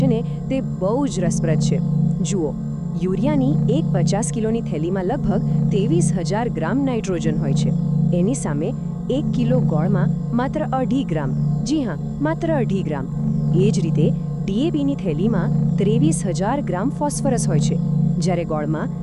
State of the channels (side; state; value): both; identical; correlation 1.00